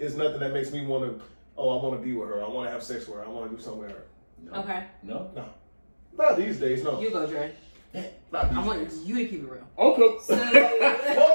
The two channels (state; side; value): inverted; both; correlation -1.00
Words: nothing that makes me want to. Oh, I want to be with her. I want to have sex with her. I want to do something with her. No. Okay. No. Not these days, no. You go, Dre. Not these I want days. you to keep it real. Okay.